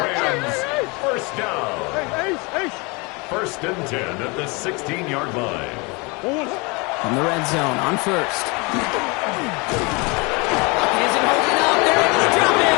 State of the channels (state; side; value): quieter; right; 28.2 dB